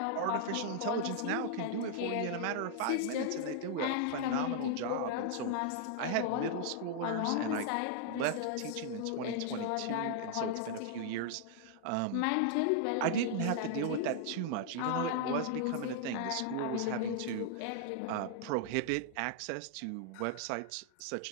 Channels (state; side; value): different; both; correlation -0.01